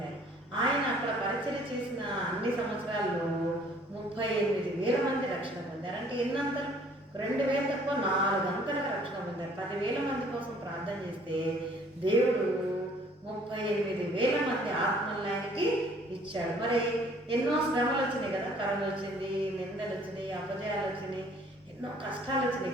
ఆయన అక్కడ పరిచర్య చేసిన అన్ని సంవత్సరాల్లో 38,000 మంది రక్షణ పొందారు. అంటే ఎన్నంతలు? 2,000 తక్కువ 4 అంతలుగా రక్షణ పొందారు. 10,000 మంది కోసం ప్రార్థన చేస్తే దేవుడు 38,000 మంది ఆత్మల్యానికి ఇచ్చాడు. మరి ఎన్నో శ్రమలు వచ్చినాయి కదా, కరోనా వచ్చింది, నిందలు వచ్చినాయి, అపజయాలు వచ్చినాయి, ఎన్నో కష్టాలు వచ్చినాయి.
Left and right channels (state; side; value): normal; both; correlation 0.57